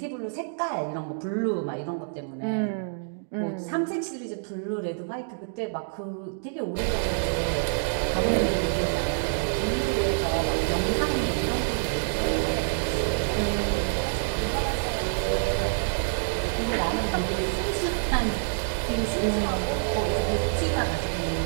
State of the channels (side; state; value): left; silent; digital silence